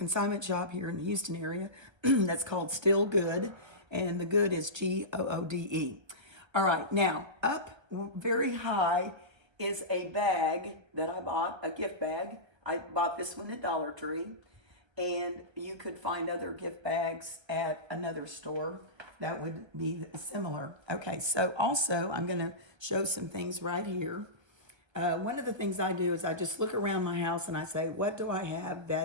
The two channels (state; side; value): late; left; 1.3 ms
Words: shop here in the Houston area that's called Still Good, and the good is Goode. All right, now up very high is a bag that I bought, a gift bag. I bought this one at Dollar Tree, and you could find other gift bags at another store that would be similar. Okay, so also I'm going to show some things right here. One of the things I do is I just look around my house and I say, what do I have